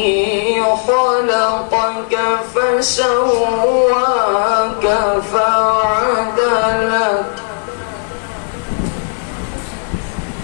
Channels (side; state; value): right; silent; 70 dB below the other